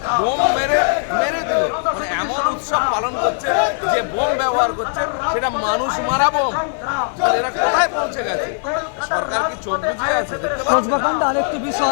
বোম মেরে দিল। মানে এমন উৎসব পালন করছে যে বোম ব্যবহার করছে, সেটা মানুষ মারা বোম। এরা কোথায় পৌঁছে গেছে? সরকার কি চোখ বুঝিয়ে আছে? দেখতে পাচ্ছেন। আরেকটি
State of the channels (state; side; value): silent; right; 60 dB below the other